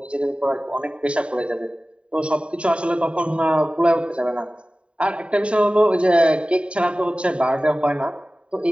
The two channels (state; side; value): late; left; 0.058 ms